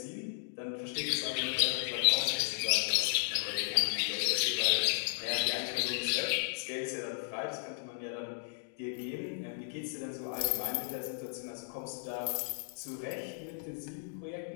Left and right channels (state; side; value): silent; right; digital silence